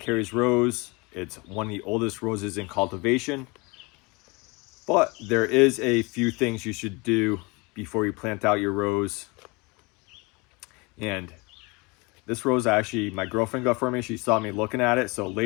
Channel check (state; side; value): quieter; right; 27.1 dB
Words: Rose. It's one of the oldest roses in cultivation. But there is a few things you should do before you plant out your rose. And this rose, actually, my girlfriend got for me. She saw me looking at it. So